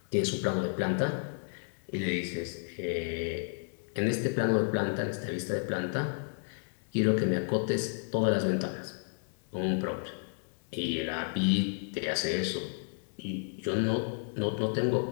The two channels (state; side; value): silent; right; digital silence